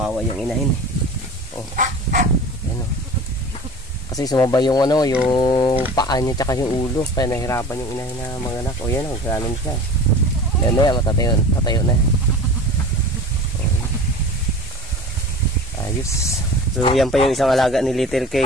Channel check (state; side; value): normal; both; correlation 0.37